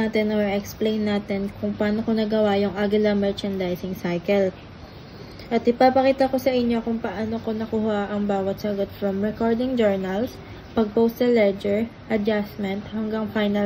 or explain natin kung paano ko nagawa yung Aguila merchandising cycle. At ipapakita ko sa inyo kung paano ko nakuha ang bawat sagot from recording journals, pag-post sa ledger, adjustment, hanggang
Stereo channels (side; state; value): both; identical; correlation 1.00